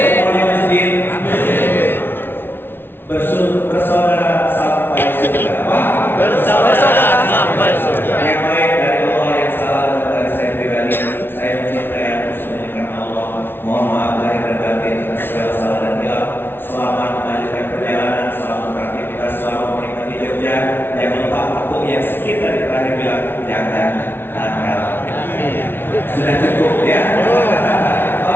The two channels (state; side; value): late; right; 0.11 ms